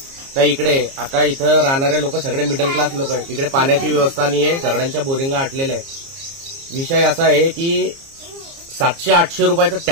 तर इकडे आता इथं राहणारे लोक सगळे मिडल क्लास लोक आहेत. इकडे पाण्याची व्यवस्था नाही आहे, सगळ्यांच्या बोरिंगा आटलेल्या आहेत. विषय असा आहे की 700-800 रुपयाचा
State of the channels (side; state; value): left; late; 30 ms